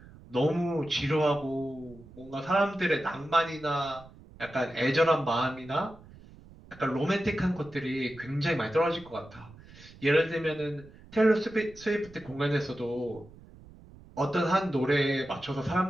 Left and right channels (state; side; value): noise; right; rumble, 21 dB below the sound